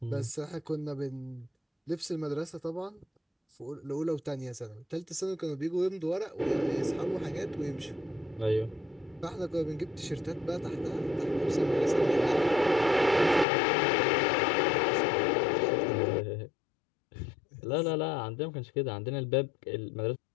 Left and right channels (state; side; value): drops out; right; at 13.5 s